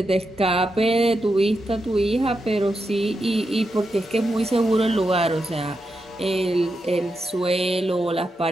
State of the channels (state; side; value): normal; both; correlation 0.86